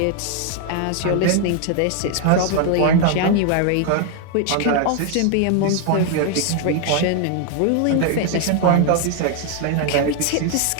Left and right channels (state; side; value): different; both; correlation 0.00